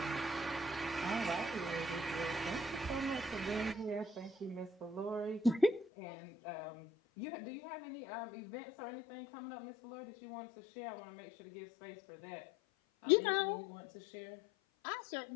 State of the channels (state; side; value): drops out; right; at 5.9 s